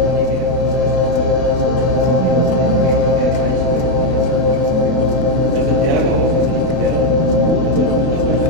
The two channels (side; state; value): left; late; 32 ms